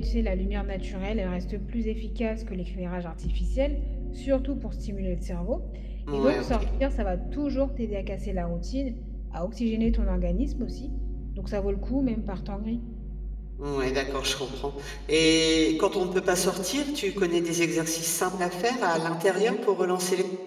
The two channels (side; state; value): both; identical; correlation 1.00